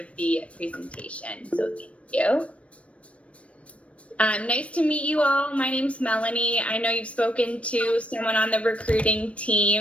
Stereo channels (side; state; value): right; late; 0.063 ms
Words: the presentation. So thank you. Nice to meet you all. My name's Melanie. I know you've spoken to someone on the recruiting